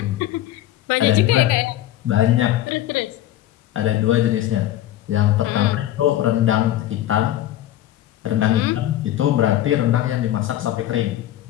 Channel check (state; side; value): quieter; right; 13.1 dB